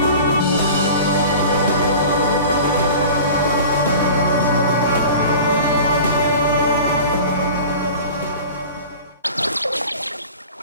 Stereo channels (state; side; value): inverted; both; correlation -0.39